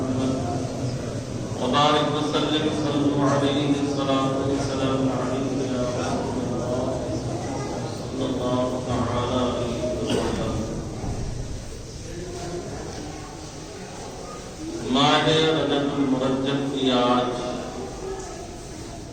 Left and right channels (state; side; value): identical; both; correlation 1.00